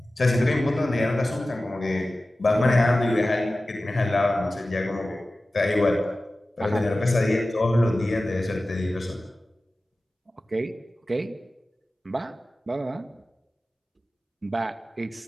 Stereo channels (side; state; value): both; normal; correlation 0.96